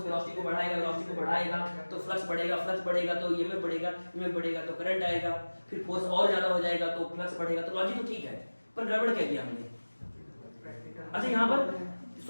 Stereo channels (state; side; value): inverted; both; correlation -1.00